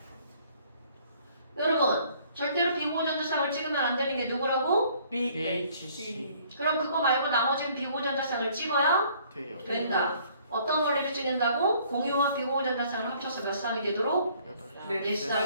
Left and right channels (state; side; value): inverted; both; correlation -0.59